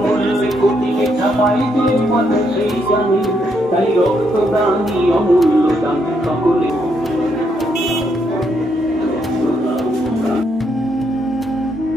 তাই রক্তদানি অমূল্য দান সকলে।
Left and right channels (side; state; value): both; normal; correlation 0.76